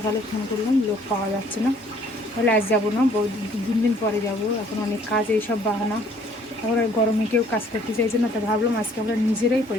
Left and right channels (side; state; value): both; normal; correlation 0.60